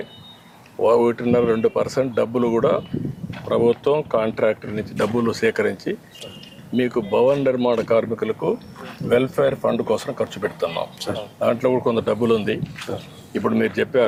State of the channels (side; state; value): both; identical; correlation 1.00